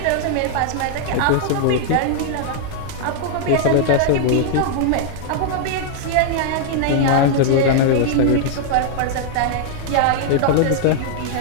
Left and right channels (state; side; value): different; both; correlation -0.01